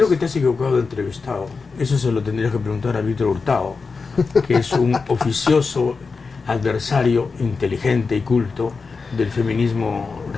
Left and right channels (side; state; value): right; quieter; 4.6 dB